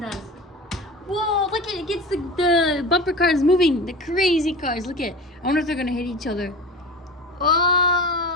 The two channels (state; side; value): normal; both; correlation 0.33